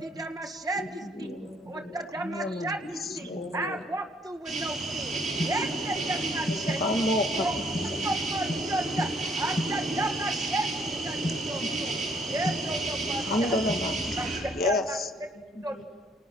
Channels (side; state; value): both; normal; correlation 0.66